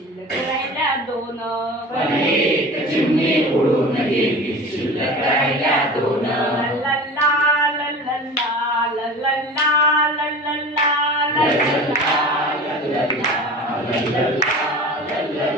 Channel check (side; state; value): both; normal; correlation 0.36